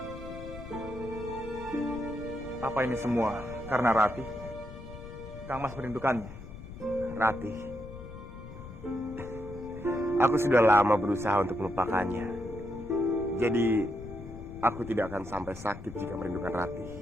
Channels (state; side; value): noise; left; rumble, 13 dB below the sound